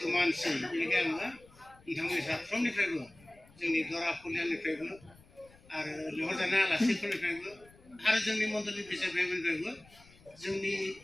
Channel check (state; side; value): noise; left; rumble, 26 dB below the sound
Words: मानसि बेनिखायनो आङो नोंथांमोननि साफ्रोमनिफ्रायबो जोंनि दरा फुलियानिफ्रायबो आरो लिंहरजानाय आलासिफोरनिफ्रायबो आरो जोंनि मन्दिरनि बिसाय भाइफोरनिफ्रायबो जोंनि